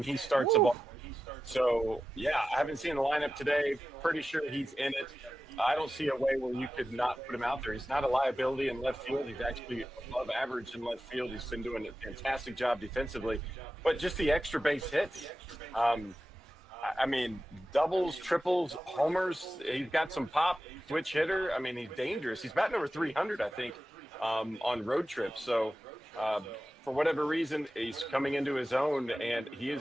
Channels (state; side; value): normal; both; correlation 0.92